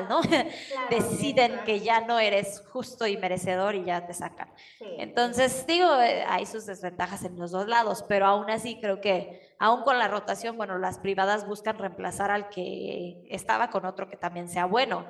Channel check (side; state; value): both; identical; correlation 1.00